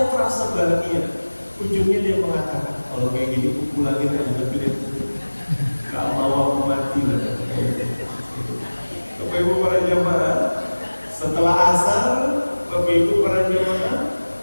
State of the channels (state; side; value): inverted; both; correlation -1.00